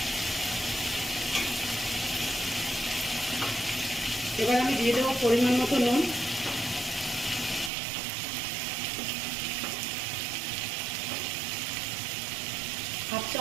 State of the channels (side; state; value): left; drops out; at 7.7 s